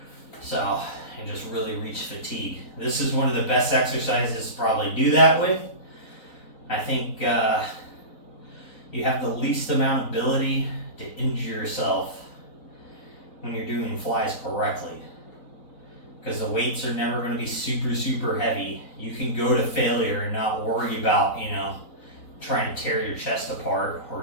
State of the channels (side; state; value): right; late; 4.0 ms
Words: So, and just really reach fatigue. This is one of the best exercises to probably do that with. I think you have the least amount of ability to injure yourself when you're doing flies correctly, because the weights are never going to be super heavy. You can go to failure and not worry about, you know, trying to tear your chest apart or